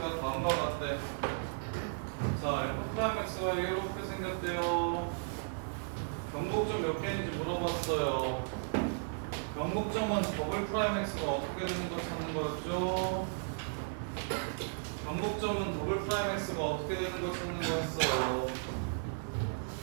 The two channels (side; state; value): left; silent; digital silence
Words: 다음과 같대. 자, f'x가 이렇게 생겼대요. 변곡점 몇 개인지 물어봤어요. 변곡점은 더블 프라임 x가 어떻게 되는 거 찾는 거였죠? 변곡점은 더블 프라임 x가 어떻게 되는 거 찾는 거였어요.